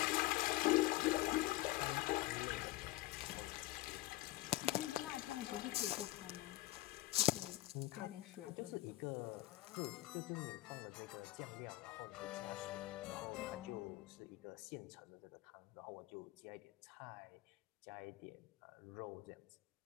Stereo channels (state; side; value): quieter; right; 17.7 dB